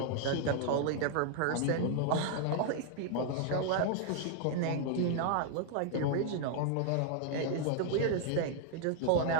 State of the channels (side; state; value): both; different; correlation 0.00